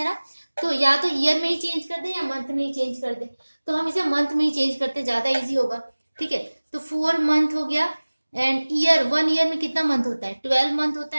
ना, तो या तो ईयर में ही चेंज कर दे या मंथ में ही चेंज कर दे, तो हम इसे मंथ में ही चेंज करते, ज्यादा इजी होगा। ठीक है, तो 4 मंथ हो गया एंड ईयर, 1 ईयर में कितना मंथ होता है, 12 मंथ होता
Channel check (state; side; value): inverted; both; correlation -1.00